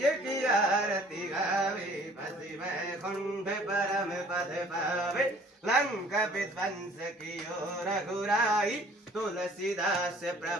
की आरती गावे बसी वैकुंठ परम पद पावे लंका विध्वंस की रघुराई तुलसीदास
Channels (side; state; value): both; normal; correlation 0.54